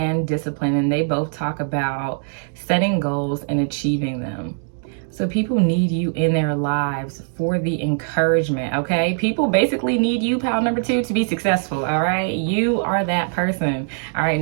discipline, and they both talk about setting goals and achieving them. So people need you in their lives for the encouragement, okay? People basically need you, pile number 2, to be successful, all right? You are that person, all right?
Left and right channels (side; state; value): left; silent; 65 dB below the other